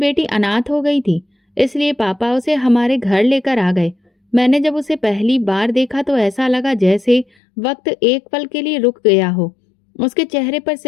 अनाथ हो गई थी, इसलिए पापा उसे हमारे घर लेकर आ गए। मैंने जब उसे पहली बार देखा तो ऐसा लगा जैसे वक्त एक पल के लिए रुक गया हो। उसके चेहरे पर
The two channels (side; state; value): right; drops out; at 7.2 s